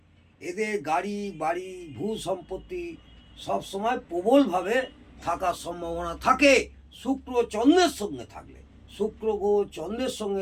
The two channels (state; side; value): identical; both; correlation 1.00